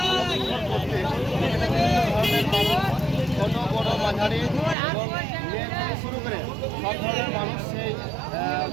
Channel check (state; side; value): drops out; left; at 4.8 s